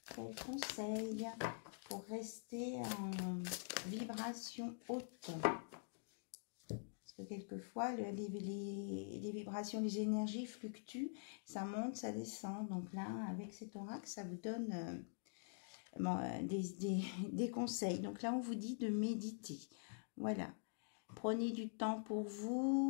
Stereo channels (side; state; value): right; silent; digital silence